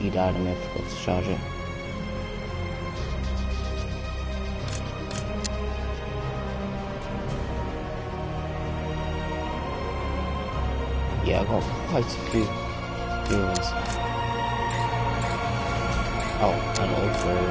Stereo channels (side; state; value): both; identical; correlation 1.00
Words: died and I forgot to charge it. Yeah, I got quite a few viewers. Oh, and also